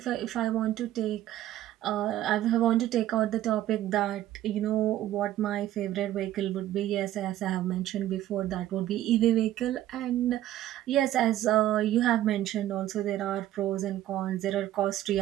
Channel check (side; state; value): left; quieter; 13.4 dB